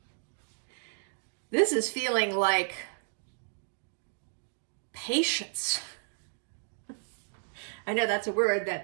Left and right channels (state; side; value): silent; left; digital silence